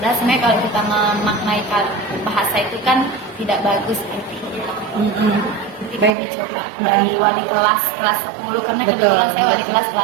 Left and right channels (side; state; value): left; drops out; at 6.2 s